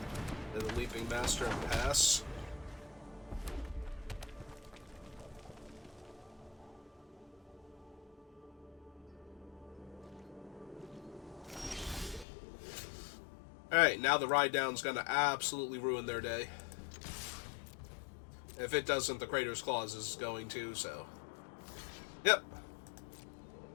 And the Leaping Master and pass. Alright, now the Ride Down's gonna absolutely ruin their day. If it doesn't, the Crater's Claws is going to, so... Yep.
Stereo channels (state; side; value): drops out; right; at 12.2 s